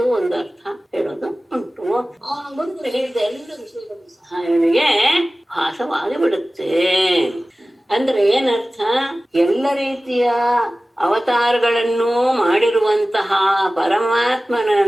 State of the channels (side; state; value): both; normal; correlation 0.97